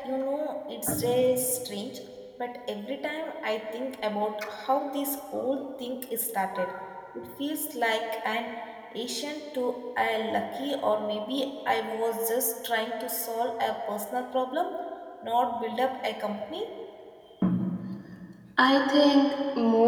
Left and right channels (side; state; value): both; identical; correlation 1.00